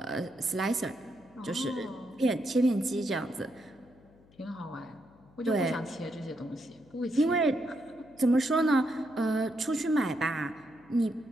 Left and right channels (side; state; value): left; noise; hum, 28 dB below the sound